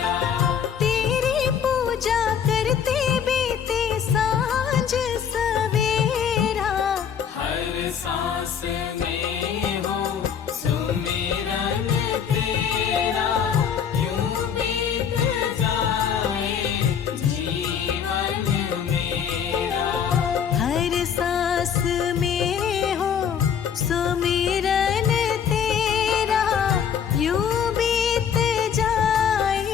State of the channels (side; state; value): right; quieter; 7.9 dB